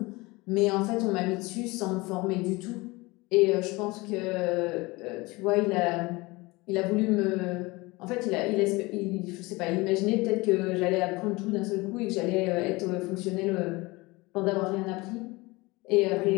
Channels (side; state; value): right; quieter; 23.2 dB